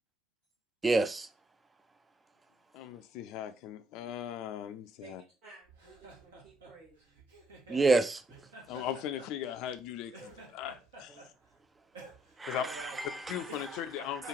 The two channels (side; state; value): both; normal; correlation 0.72